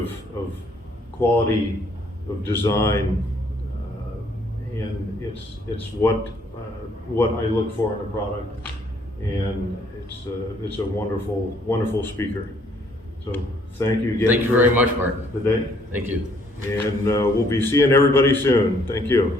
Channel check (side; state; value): both; normal; correlation 0.65